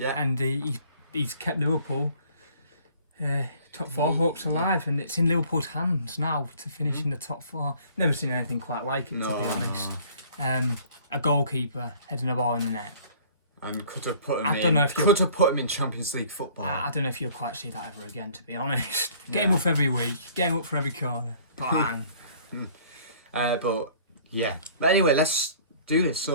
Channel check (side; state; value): both; inverted; correlation -0.53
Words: And he's kept Liverpool top 4 hopes alive, and it's in Liverpool's hands now to finish in the top 4. Never seen anything quite like it, to be honest. A goalkeeper heading a ball in the net. And could have put him in Champions League football. I don't know if you'll quite see that ever again, to be honest. Get him up every week, get him up for every corner. Bang. But anyway, let's do this.